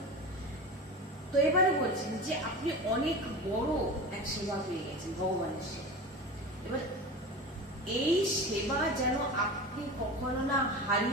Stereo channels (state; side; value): normal; both; correlation 0.30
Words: তো এবারে বলছেন যে আপনি অনেক বড় এক সেবা পেয়ে গেছেন, ভগবানের সেবা। এবার এই সেবা যেন আপনি কখনো না